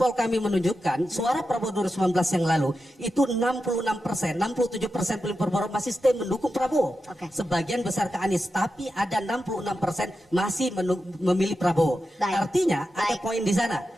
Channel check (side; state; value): both; normal; correlation 0.90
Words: kami menunjukkan, suara Prabowo 2019 yang lalu, itu 66%, 67% pemilih Prabowo masih stay mendukung Prabowo. Sebagian besar ke Anies, tapi ada 66% masih memilih Prabowo. Artinya ada poin di sana.